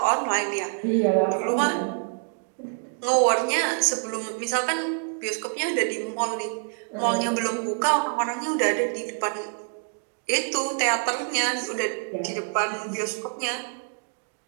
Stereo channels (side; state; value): left; silent; 61 dB below the other